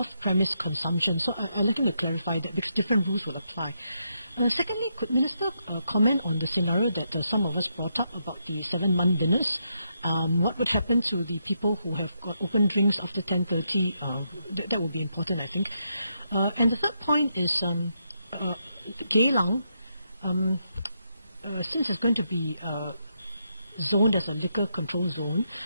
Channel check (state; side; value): inverted; both; correlation -0.81